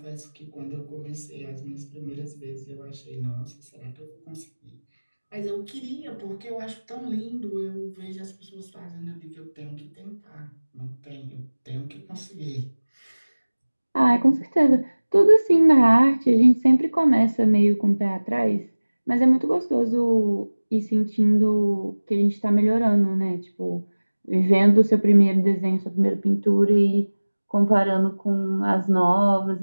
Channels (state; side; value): inverted; both; correlation -1.00